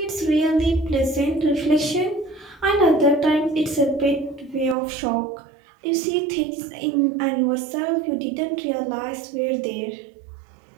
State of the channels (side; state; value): left; drops out; at 4.8 s